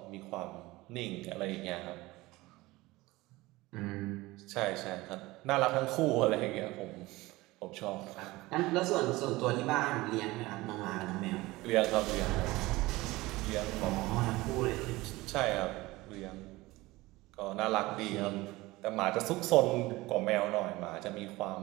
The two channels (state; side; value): quieter; left; 20.1 dB